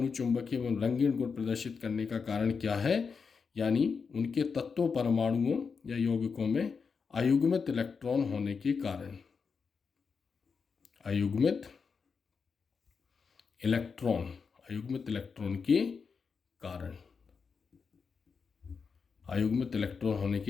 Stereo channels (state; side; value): quieter; right; 5.5 dB